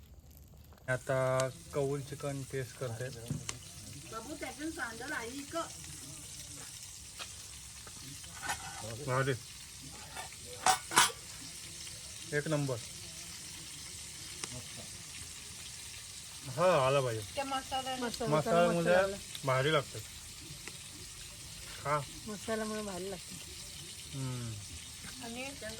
आता कौल चिकन टेस्ट करते. भारी. एक नंबर. हा आला पाहिजे. त्या मसाल्यामुळे भारी लागतं. हा. मसाल्यामुळे भारी लागते. हम्म. आणि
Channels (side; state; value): both; identical; correlation 1.00